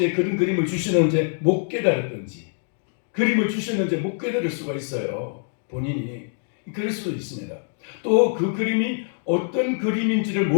그런 그림을 주시는데 못 깨달았든지 그림을 주시는데 못 깨달을 수가 있어요. 본인이 그럴 수도 있습니다. 또 그 그림이 어떤 그림인지를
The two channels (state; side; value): silent; right; digital silence